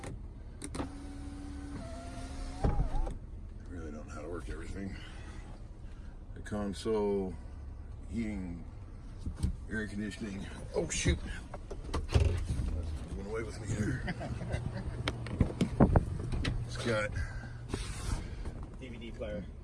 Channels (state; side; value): identical; both; correlation 1.00